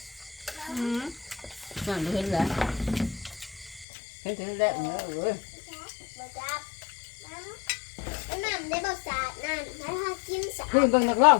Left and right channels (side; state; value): right; drops out; at 3.9 s